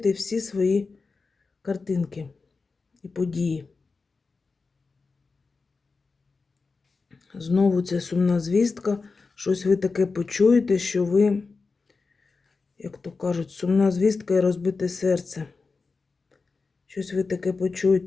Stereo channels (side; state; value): right; quieter; 4.3 dB